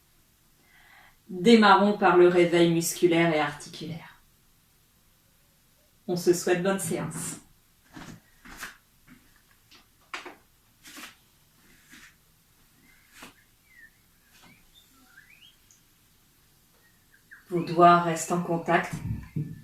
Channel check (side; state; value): both; identical; correlation 1.00